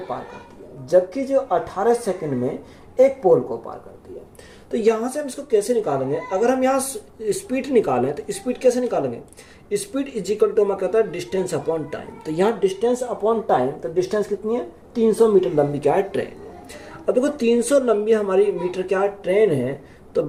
पार करती है, जबकि जो 18 सेकंड में एक पोल को पार करती है। तो यहाँ से हम इसको कैसे निकालेंगे? अगर हम यहाँ स्पीड निकालें तो स्पीड कैसे निकालेंगे? स्पीड इज इक्वल टू मैं कहता है डिस्टेंस अपॉन टाइम। तो यहाँ डिस्टेंस अपॉन टाइम, तो डिस्टेंस कितनी है? 300 मीटर लंबी क्या है? ट्रेन है। अब देखो 300 लंबी हमारी मीटर क्या है? ट्रेन है। तो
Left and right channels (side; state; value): both; identical; correlation 1.00